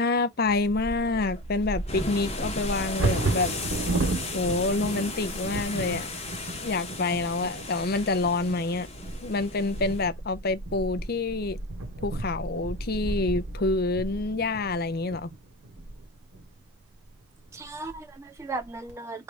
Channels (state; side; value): normal; both; correlation 0.25